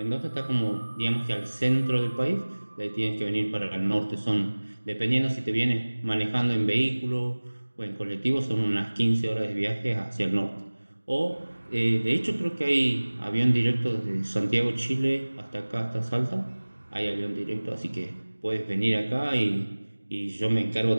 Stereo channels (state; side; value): inverted; both; correlation -1.00